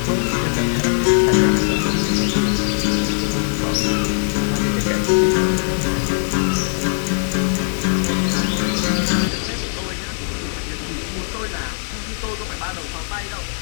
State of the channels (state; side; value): silent; right; 65 dB below the other